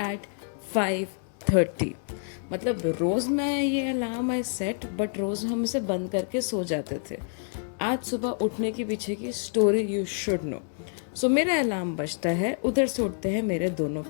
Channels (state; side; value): silent; right; digital silence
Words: एट 5:30. मतलब रोज़ मैं ये अलार्म आई सेट बट रोज़ हम इसे बंद करके सो जाते थे. आज सुबह उठने के पीछे की स्टोरी यू शुड नो. सो मेरा अलार्म बजता है, उधर से उठते हैं मेरे दोनों